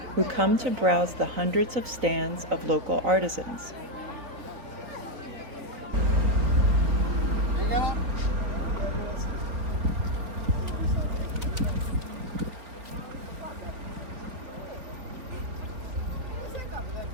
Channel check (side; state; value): left; late; 3.9 ms